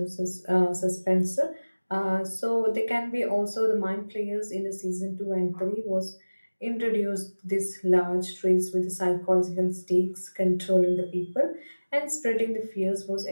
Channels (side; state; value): both; inverted; correlation -1.00